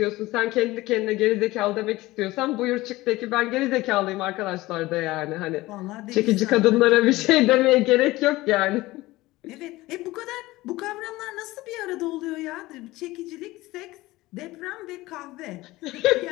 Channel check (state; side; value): quieter; right; 18.9 dB